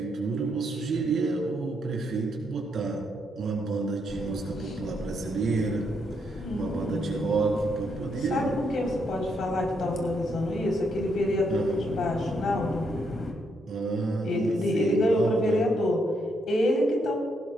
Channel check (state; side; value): normal; both; correlation 0.77